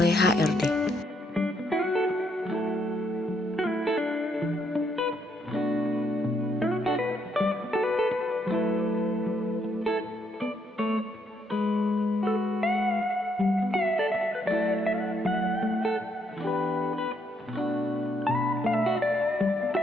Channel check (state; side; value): normal; both; correlation 0.75